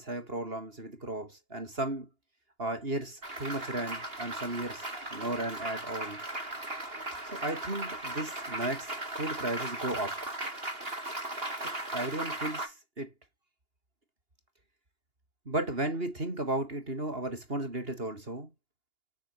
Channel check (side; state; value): left; late; 2.8 ms